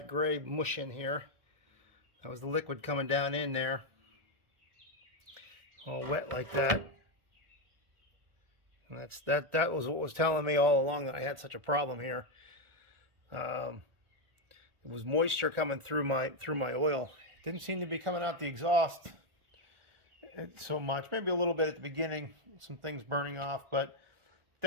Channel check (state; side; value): late; left; 1.4 ms